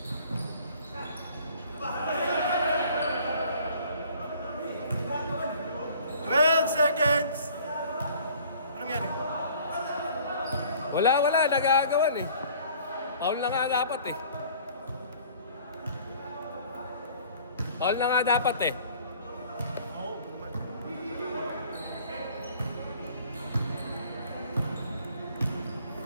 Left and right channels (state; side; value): inverted; both; correlation -0.52